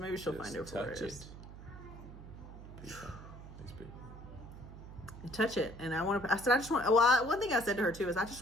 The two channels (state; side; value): noise; right; hum, 14 dB below the sound